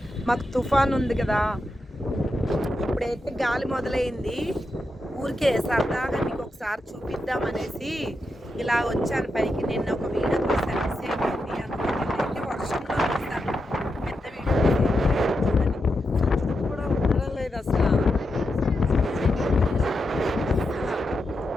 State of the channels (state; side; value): normal; both; correlation 0.86